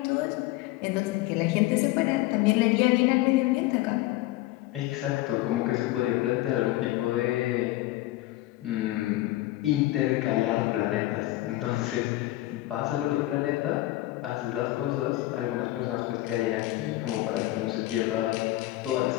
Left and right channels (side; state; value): right; quieter; 17.3 dB